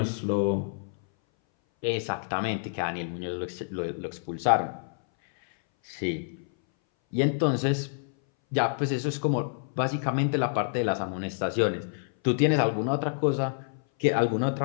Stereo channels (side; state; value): right; silent; 59 dB below the other